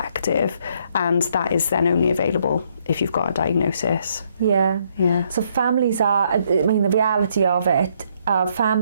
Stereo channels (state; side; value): inverted; both; correlation -0.70